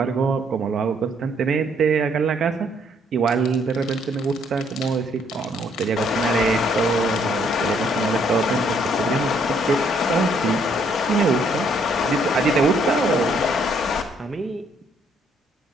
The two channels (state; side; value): normal; both; correlation 0.67